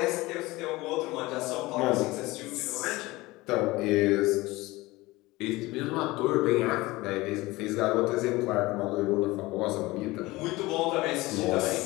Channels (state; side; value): quieter; right; 20.5 dB